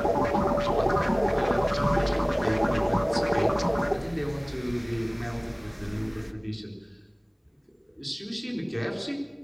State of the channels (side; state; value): both; identical; correlation 1.00